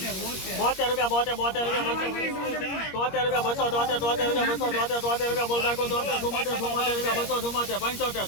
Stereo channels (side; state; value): right; late; 21 ms